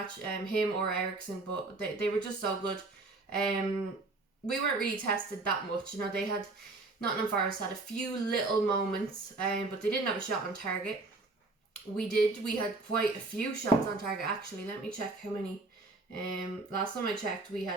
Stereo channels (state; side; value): quieter; left; 3.3 dB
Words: him or Eriksen. But they were just so good. We weren't really tested that much. You know, Nottingham Forest had a few little moments, but they didn't have a shot on target. We did. We had quite a few shots on target, actually. Let me check how many. Last time I checked, we